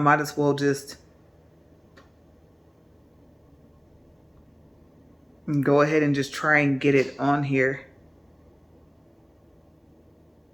as well just go ahead and just try and get it on here.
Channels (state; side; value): identical; both; correlation 1.00